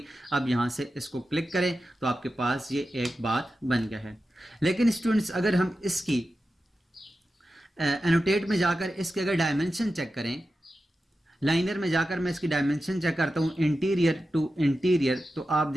अब यहाँ से इसको क्लिक करें तो आपके पास ये एक बात बन गया है। लेकिन स्टूडेंट्स अगर हम इसकी एनोटेट में जाकर इसके अगर डायमेंशन चेक करें, लाइनर में जाकर मैं इसकी डायमेंशन चेक करता हूँ इंटीरियर टू इंटीरियर, तो आप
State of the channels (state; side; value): normal; both; correlation 0.92